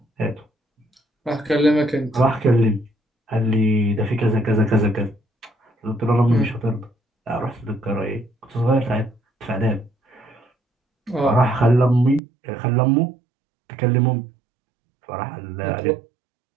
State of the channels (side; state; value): left; drops out; at 12.2 s